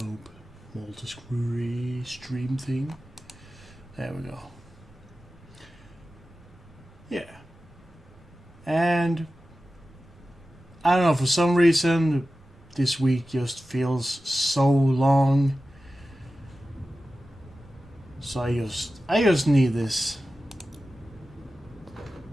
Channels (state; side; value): normal; both; correlation 0.94